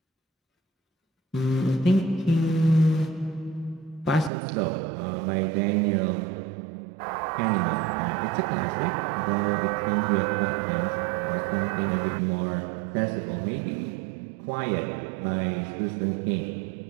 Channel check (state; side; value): drops out; left; at 4.3 s